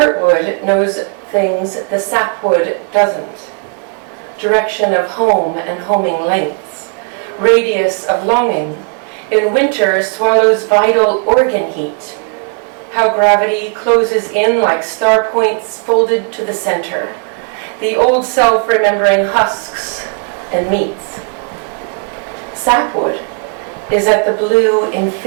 knows things the sapwood doesn't. Direction of home and homing lengths. Radius of longing. In winter swallows vital organ heat. How gravity closes in like star points folded to the center. The old self remembering husks and meats. Sapwood is at the blue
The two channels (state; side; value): quieter; left; 38.1 dB